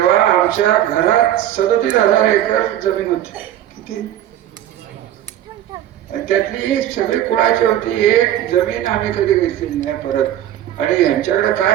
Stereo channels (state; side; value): quieter; left; 11.9 dB